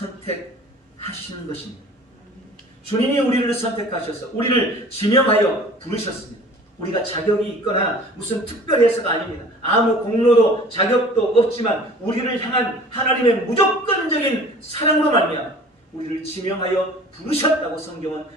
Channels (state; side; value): normal; both; correlation 0.46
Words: 것입니다. 주님이 우리를 선택하셔서 우리를 지명하여 부르셨습니다. 우리가 자격이 있거나 무슨 특별해서가 아닙니다. 아무 공로도 자격도 없지만 우리를 향한 하나님의 무조건적인 사랑으로 말미암아 우리를 지명하여 부르셨다고 성경은